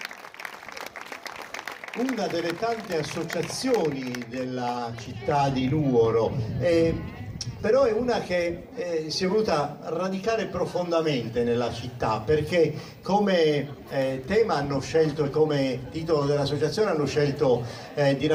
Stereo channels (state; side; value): identical; both; correlation 1.00